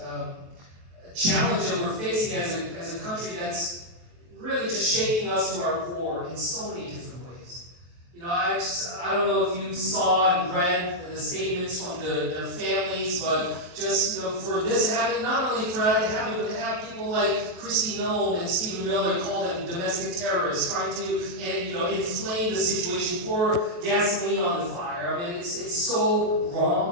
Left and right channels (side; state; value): left; late; 23 ms